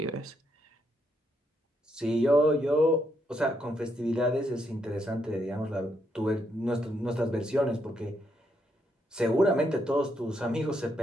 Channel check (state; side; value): normal; both; correlation 0.77